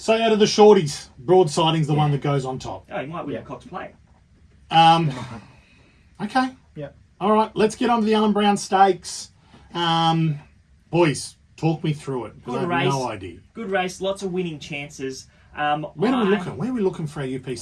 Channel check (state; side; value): identical; both; correlation 1.00